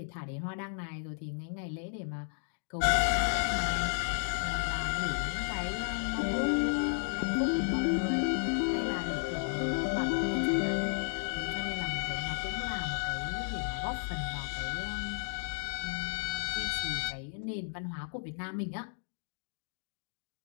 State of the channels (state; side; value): silent; right; digital silence